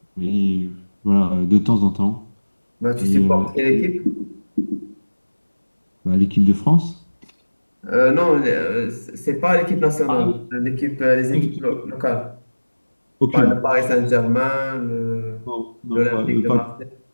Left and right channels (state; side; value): inverted; both; correlation -1.00